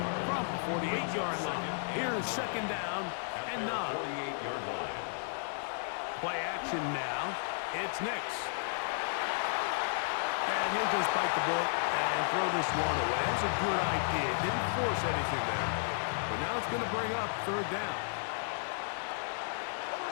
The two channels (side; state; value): right; silent; digital silence